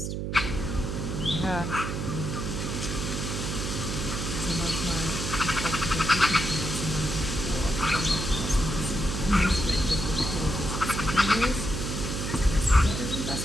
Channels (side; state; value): right; noise; hum, 3 dB below the sound